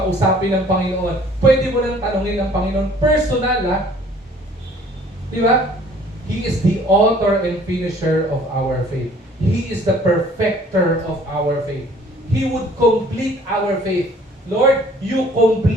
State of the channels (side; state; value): both; normal; correlation 0.55